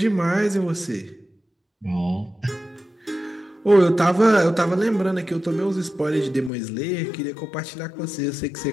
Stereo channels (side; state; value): right; drops out; at 6.5 s